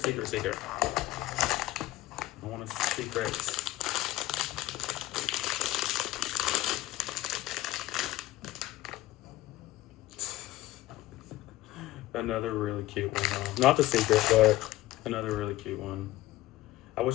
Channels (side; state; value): right; quieter; 16.5 dB